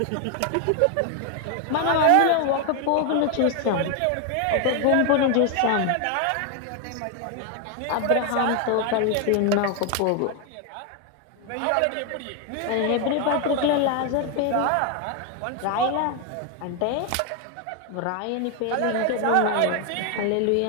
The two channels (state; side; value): different; both; correlation 0.01